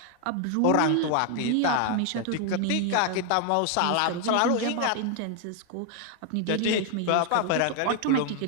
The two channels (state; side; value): different; both; correlation 0.00